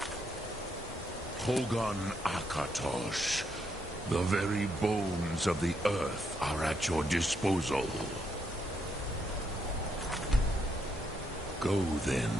Hogan Akatosh. The very bones of the earth are at your disposal. Go then,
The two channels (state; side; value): normal; both; correlation 0.77